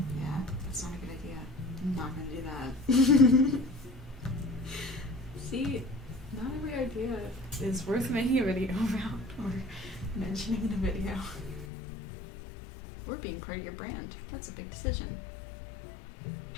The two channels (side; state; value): right; drops out; at 11.7 s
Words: Yeah, that's not a good idea. I'm not gonna do that. See, not every idea is worth making a video about or mentioning in a video. Or being part of your brand. That's a big decision.